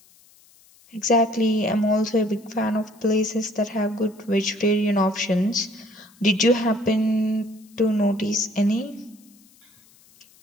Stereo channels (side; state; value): left; noise; hiss, 29 dB below the sound